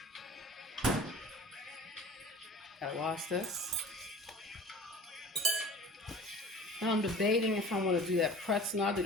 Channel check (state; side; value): normal; both; correlation 0.41